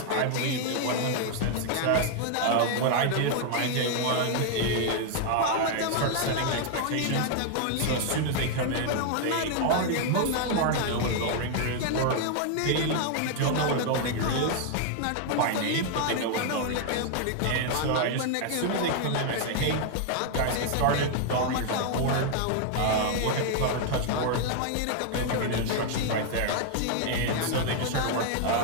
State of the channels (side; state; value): both; different; correlation 0.00